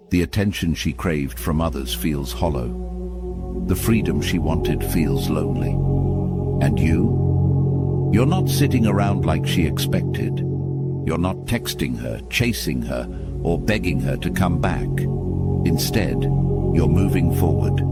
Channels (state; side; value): identical; both; correlation 1.00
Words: The attention she craved from others feels hollow. The freedom she wanted feels lonely. And you're not sitting around like she expected. You're not texting her, chasing her, or begging her to come back. Instead, you're moving forward,